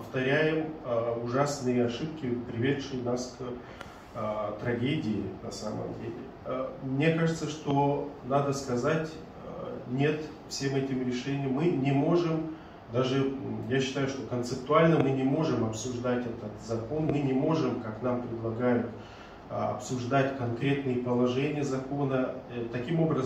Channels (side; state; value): both; identical; correlation 1.00